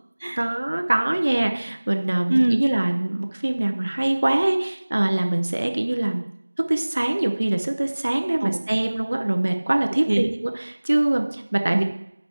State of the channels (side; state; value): both; inverted; correlation -1.00